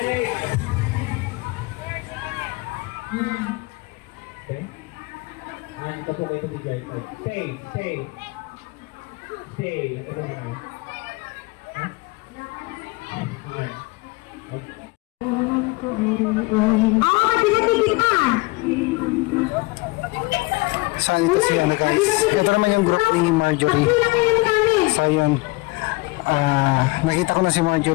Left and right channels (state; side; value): quieter; right; 24.8 dB